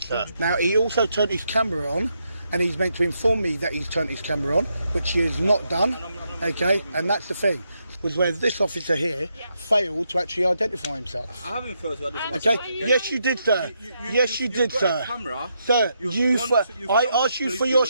Now, he also turned his camera on, and he's meant to inform me that he's turned his camera on, which he has not done, okay? And that's the thing, was where this officer here failed to actually identify himself. I haven't failed to identify myself. myself. Okay? Yes, you did, sir. Yes, you did, sir. Sir, I asked you for your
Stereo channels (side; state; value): both; inverted; correlation -0.80